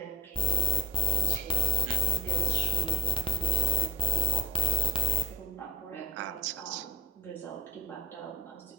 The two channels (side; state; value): both; normal; correlation 0.49